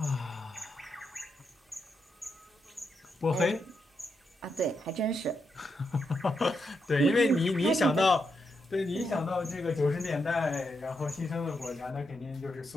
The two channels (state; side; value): normal; both; correlation 0.83